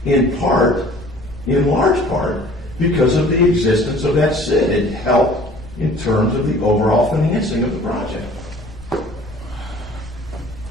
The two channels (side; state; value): both; normal; correlation 0.50